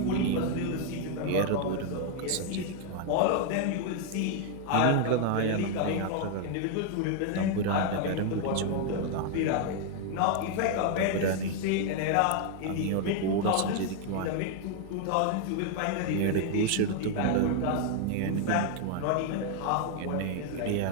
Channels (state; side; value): different; both; correlation 0.00